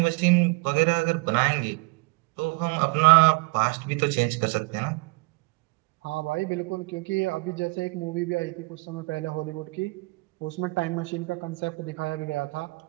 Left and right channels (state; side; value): quieter; left; 27.6 dB